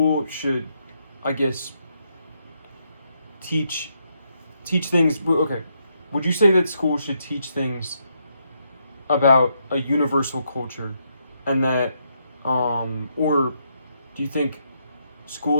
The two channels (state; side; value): inverted; both; correlation -0.78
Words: should, I guess, teach things? Okay, would you say that school should teach things about a universal culture, and that, or do you think